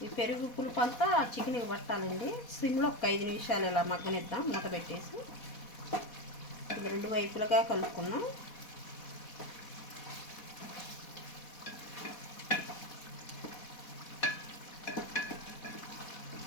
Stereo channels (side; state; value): right; late; 4.1 ms